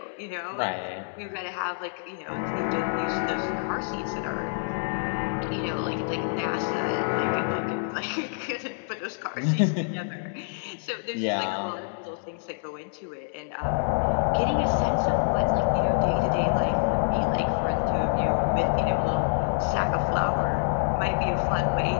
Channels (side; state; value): right; silent; 60 dB below the other